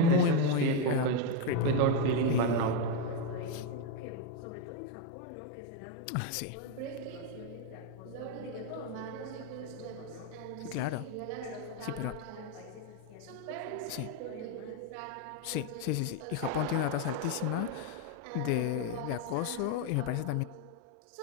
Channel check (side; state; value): both; different; correlation 0.02